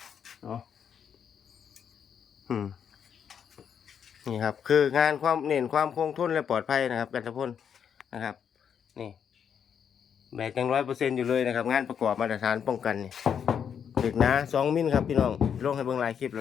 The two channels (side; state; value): right; quieter; 7.8 dB